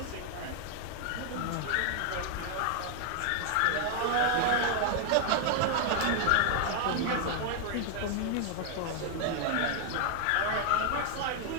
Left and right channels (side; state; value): both; different; correlation 0.00